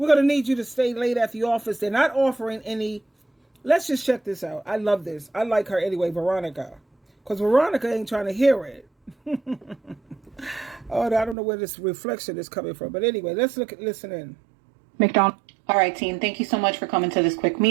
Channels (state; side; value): drops out; left; at 11.4 s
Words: going to need you to stay late at the office. They're not offering any. Let's just check this out. I love this. I like her anyway, Veronica. Because Veronica ain't trying to hear it. Oh, I don't know where this reflection is coming from. But anyway, listen in. McDonald. All right, team. Thank you so much for coming to this quick